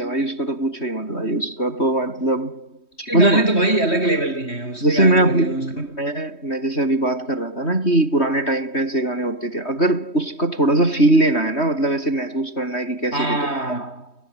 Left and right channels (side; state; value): right; late; 3.2 ms